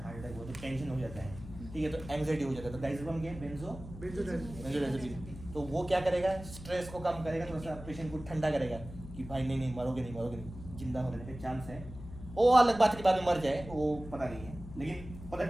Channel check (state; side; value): noise; left; hum, 13 dB below the sound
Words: हार्ट अटैक हो तो टेंशन हो जाता है, ठीक है, तो एंग्जाइटी हो जाता है, तो डाइज़ेपम क्या है, बेंजोडाइज़ेपिन। तो वो क्या करेगा, स्ट्रेस को कम करेगा, थोड़ा सा पेशेंट को ठंडा करेगा कि भाई नहीं मरोगे नहीं, जिंदा होने का चांस है। वो अलग बात है कि बाद में मर जाए, वो पता नहीं है, लेकिन फॉर द